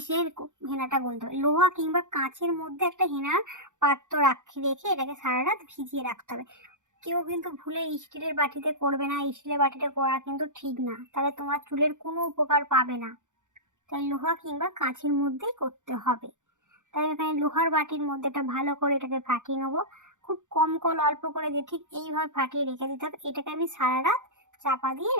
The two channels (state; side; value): late; left; 0.86 ms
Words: হেনাটা গুলতে হবে। লোহা কিংবা কাঁচের মধ্যে একটা হেনার পাত্র রেখে এটাকে সারা রাত ভিজিয়ে রাখতে হবে। কেউ কিন্তু ভুলে স্টিলের বাটিতে করবে না। স্টিলের বাটিতে করা কিন্তু ঠিক না, তাহলে তোমার চুলের কোনো উপকার পাবে না। তাই লোহা কিংবা কাঁচের মধ্যেই করতে হবে। তাই এখানে লোহার বাটির মধ্যে এটা ভালো করে এটাকে ফাটিয়ে নেবো। খুব কম কল অল্প করে দিয়ে ঠিক এইভাবে ফাটিয়ে রেখে দিতে হবে। এটাকে আমি সারা রাত চাপা দিয়ে